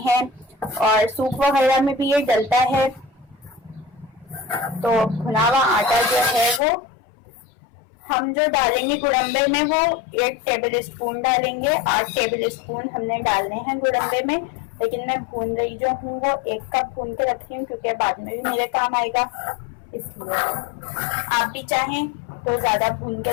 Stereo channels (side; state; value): right; drops out; at 6.6 s